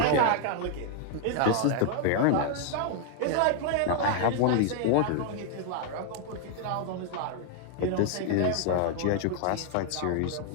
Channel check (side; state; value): both; different; correlation 0.00